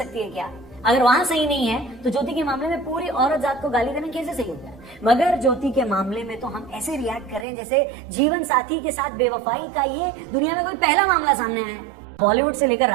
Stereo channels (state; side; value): drops out; left; at 7.5 s